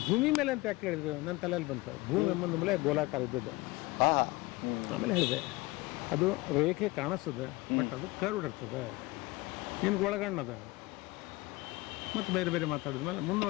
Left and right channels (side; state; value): right; quieter; 21.2 dB